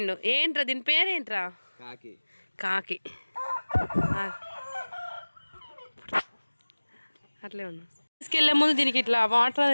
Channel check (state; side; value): inverted; both; correlation -1.00